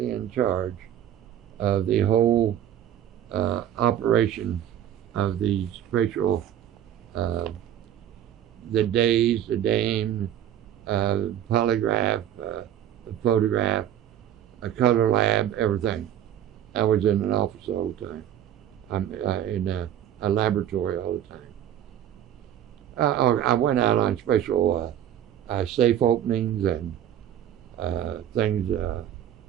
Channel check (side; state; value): left; quieter; 10.9 dB